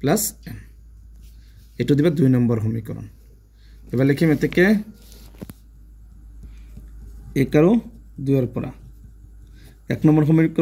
n এটো দিবা 2 নম্বৰ সমীকৰণ এবাৰ লিখিম এতেকে 1 আৰু 2 ৰ পৰা 1 নম্বৰ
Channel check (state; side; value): identical; both; correlation 1.00